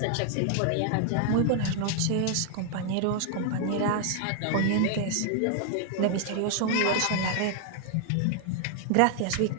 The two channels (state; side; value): different; both; correlation 0.00